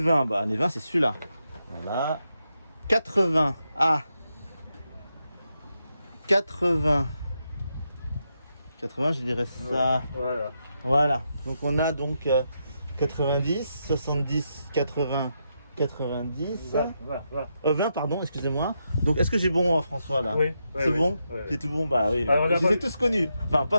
bah année 20, c'est celui-là. Voilà. 80. Ah. 80. 80, je dirais ça. Voilà. Voilà. Donc on a donc 90, 70, 80, 90. Voilà. 20, pardon, excusez-moi. Donc est-ce que j'ai bon François là? Oui. C'est bon? Oui. J'ai tout bon? Bah oui. Alors, Je les ai d'abord- tous connus. Enfin,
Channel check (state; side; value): inverted; both; correlation -0.83